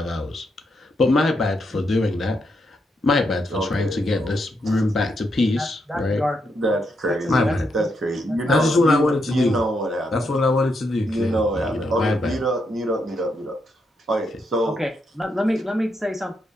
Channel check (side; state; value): both; normal; correlation 0.80